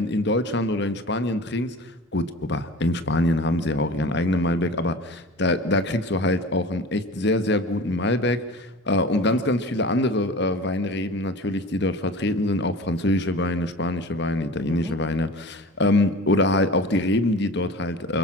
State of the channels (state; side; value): normal; both; correlation 0.38